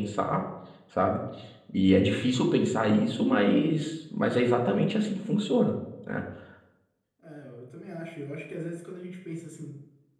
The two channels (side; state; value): both; identical; correlation 1.00